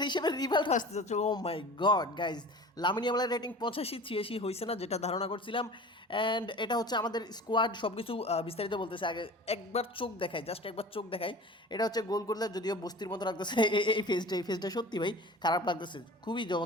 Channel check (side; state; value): both; normal; correlation 0.39